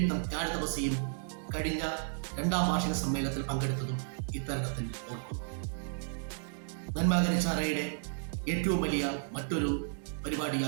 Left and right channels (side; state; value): left; silent; digital silence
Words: ജ്ഞാനതപസിയും കഴിഞ്ഞ 2ാം വാർഷിക സമ്മേളനത്തിൽ പങ്കെടുത്തതും ഇത്തരണത്തിൽ ഓർക്കുന്നു. നന്മ കരിച്ചാറയുടെ ഏറ്റവും വലിയ മറ്റൊരു